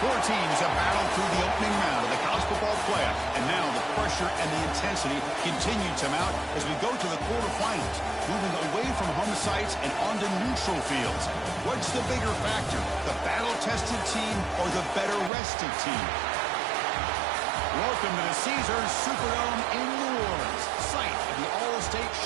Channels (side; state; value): left; drops out; at 15.3 s